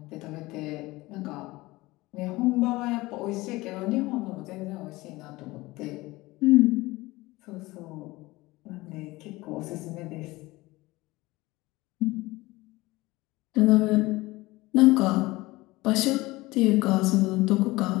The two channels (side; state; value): right; quieter; 20.4 dB